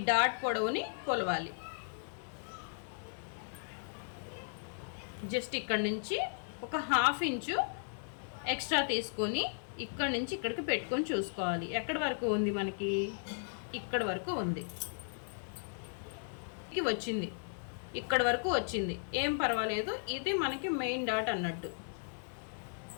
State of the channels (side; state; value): right; silent; digital silence